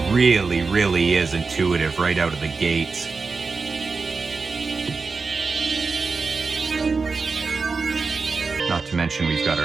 really is intuitive right out of the gates. Not to mention we've got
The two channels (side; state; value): left; quieter; 4.5 dB